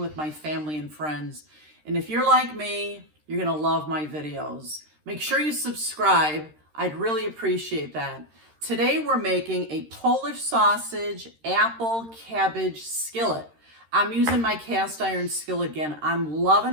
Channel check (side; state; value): left; late; 13 ms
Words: my family and friends. And if you're like me, you're gonna love my videos. Make sure you subscribe. I'd really appreciate that. Today we're making a Polish sausage apple cabbage skillet. I'm using my cast iron skillet again. I'm